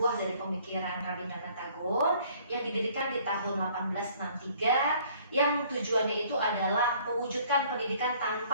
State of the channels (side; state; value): both; inverted; correlation -0.58